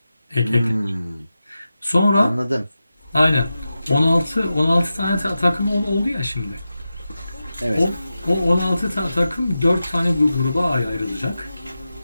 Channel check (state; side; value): inverted; both; correlation -0.92